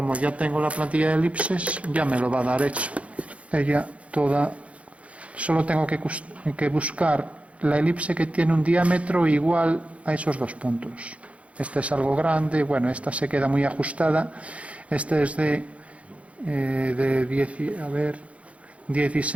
ya tengo la plantilla de elipses, ya me lo va a dar hecho. Ella toda, solo tengo que buscar la elipse que tiene un diámetro igual a esos dos puntos. Esta es algo grande, bueno, esta se queda muy ajustada. Este es de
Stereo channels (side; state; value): left; late; 0.064 ms